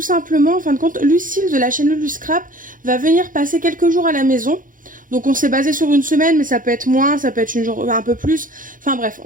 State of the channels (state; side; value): late; left; 0.39 ms